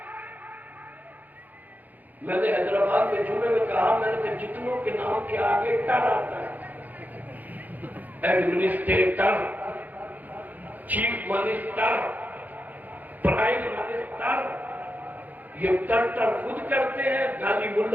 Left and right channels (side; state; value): left; late; 0.082 ms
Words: میں نے حیدرآباد میں جمعے میں کہا, میں نے کہا جتنوں کے نام کے آگے ٹر آتا ہے, administrator, chief minister, prime minister, یہ ٹر خود کرتے ہیں, گالی